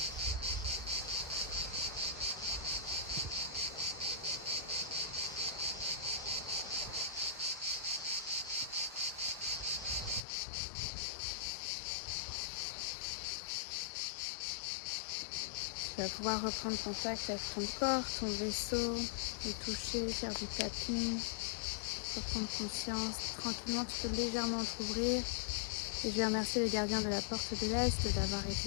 Tu vas pouvoir reprendre contact avec ton corps, ton vaisseau, le toucher, faire du tapping, reprendre conscience. Tranquillement, tu peux légèrement t'ouvrir. Et je vais remercier les gardiens de la porte de l'Est d'avoir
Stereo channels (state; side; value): drops out; right; at 10.2 s